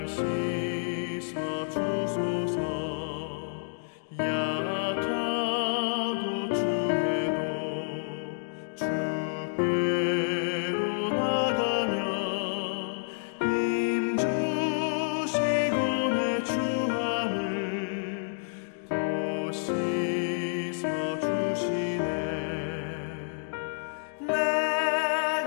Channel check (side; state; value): right; silent; digital silence